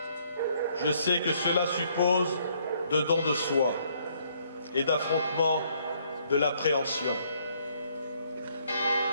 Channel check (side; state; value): both; inverted; correlation -0.67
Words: je sais que cela suppose de don de soi et d'affrontement de l'appréhension.